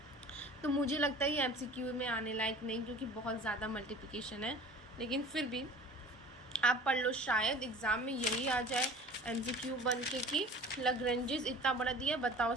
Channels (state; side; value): normal; both; correlation 0.43